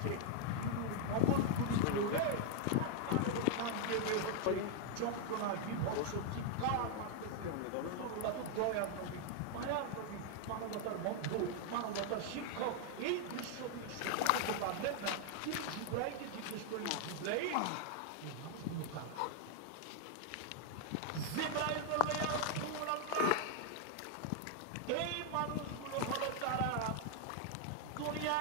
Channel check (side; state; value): both; different; correlation 0.00